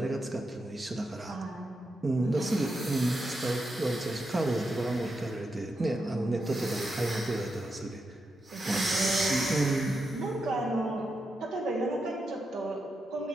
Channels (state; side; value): normal; both; correlation 0.86